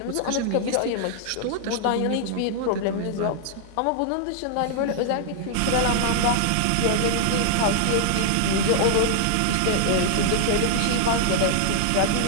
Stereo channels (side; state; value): both; different; correlation 0.00